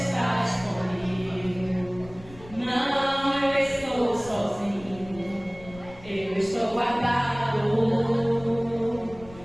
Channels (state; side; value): noise; left; rumble, 19 dB below the sound